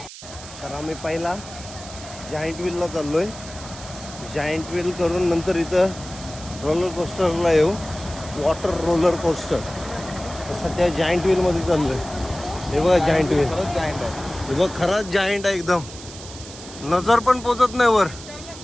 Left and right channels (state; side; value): noise; right; hiss, 15 dB below the sound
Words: तर आम्ही पहिला जायंट व्हीलला चाललो आहे. जायंट व्हील करून नंतर इथं रोलर कोस्टरला येऊ, वॉटर रोलर कोस्टर. सध्या जायंट व्हीलमध्ये चाललो आहे. हे बघा जायंट व्हील, हे बघ खरंच जायंट आहे एकदम. नजर पण पोचत नाही वर.